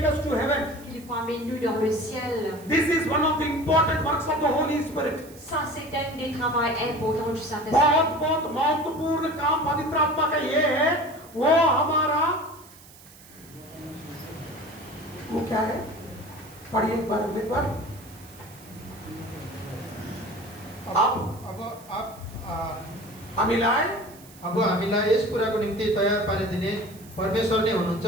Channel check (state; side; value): noise; right; hiss, 22 dB below the sound